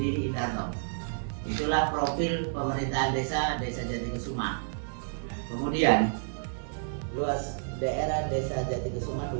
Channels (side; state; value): left; silent; 58 dB below the other